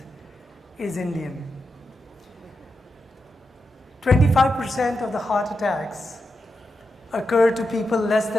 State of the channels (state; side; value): normal; both; correlation 0.87